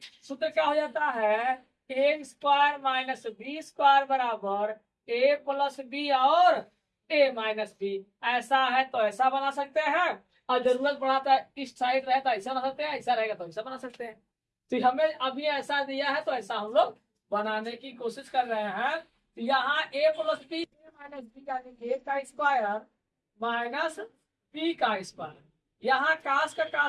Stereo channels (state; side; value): identical; both; correlation 1.00